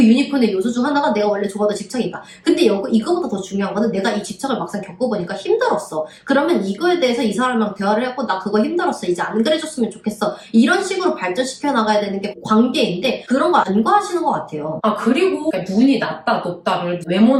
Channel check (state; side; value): identical; both; correlation 1.00